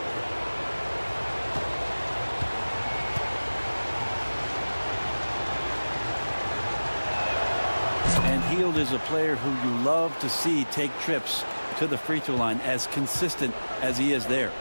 Hield is a player who you love to see take trips to the free throw line, as consistent as he is there.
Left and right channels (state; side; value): inverted; both; correlation -1.00